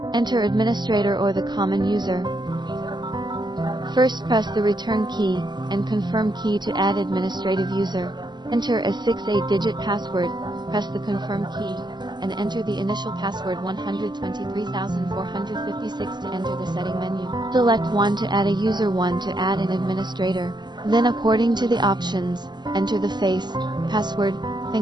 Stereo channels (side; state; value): left; late; 0.21 ms